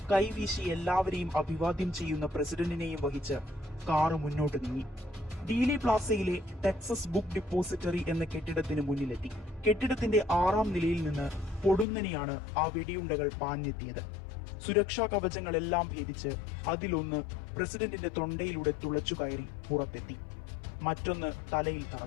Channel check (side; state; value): right; drops out; at 11.9 s